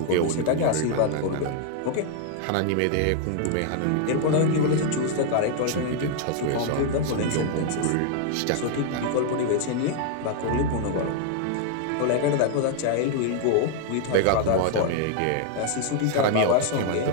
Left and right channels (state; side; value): different; both; correlation 0.00